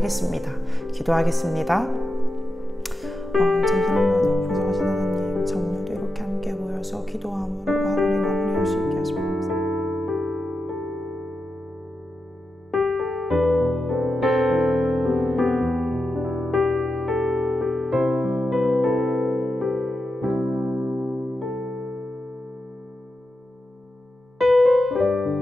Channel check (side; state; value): both; normal; correlation 0.89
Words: 기도하겠습니다. 잠시만요. 보살하신 하나님, 참 오늘도 이렇게 함께 모여서 기도함으로 하루를 마무리할 수 있게 하시면 감사합니다.